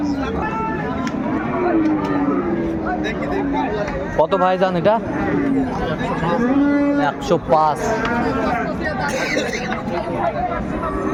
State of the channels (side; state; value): both; identical; correlation 1.00